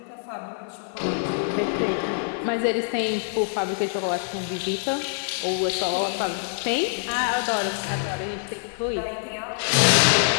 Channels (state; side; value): silent; right; 62 dB below the other